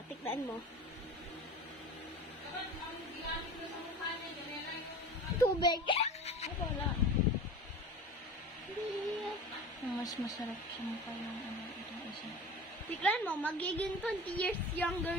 Tignan mo. Tubig. Wala. Mas masarap sa mukha yung itong isa. Tignan mo, magiging 20 years younger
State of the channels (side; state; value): both; normal; correlation 0.36